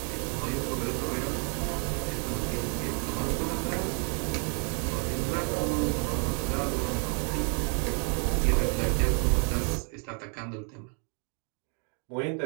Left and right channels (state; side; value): quieter; left; 38.6 dB